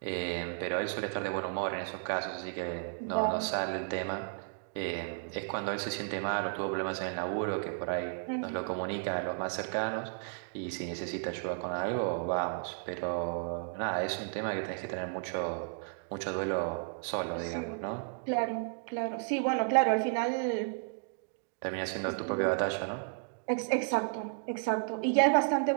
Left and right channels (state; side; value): silent; left; digital silence